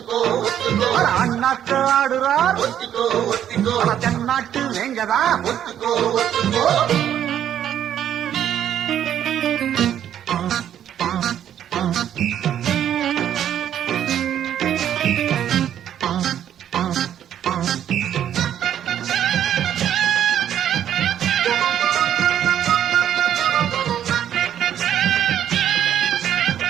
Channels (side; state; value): left; quieter; 10.2 dB